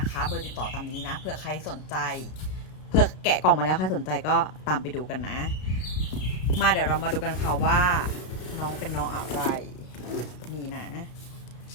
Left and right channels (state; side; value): late; right; 33 ms